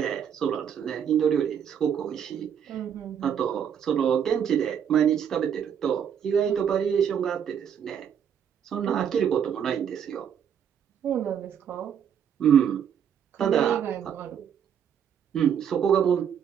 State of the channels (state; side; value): quieter; left; 8.3 dB